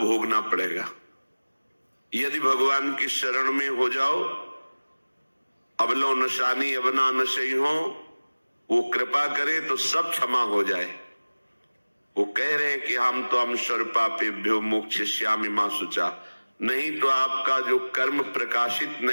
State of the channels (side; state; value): both; inverted; correlation -1.00